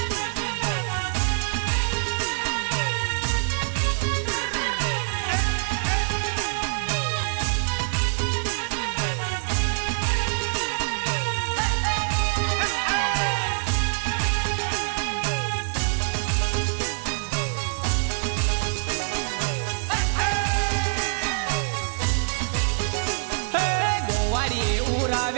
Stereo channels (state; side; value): silent; left; digital silence